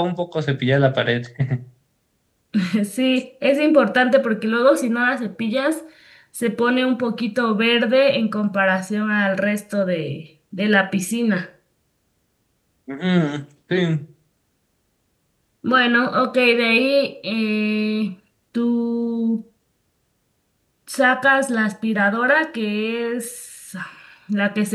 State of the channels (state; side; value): identical; both; correlation 1.00